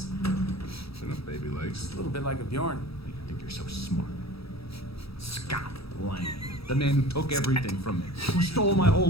Enough baby legs. A little bit like a Bjorn. You think you're so smart. Scott Lang. The man who took everything from me. Who stole my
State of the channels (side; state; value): right; late; 0.77 ms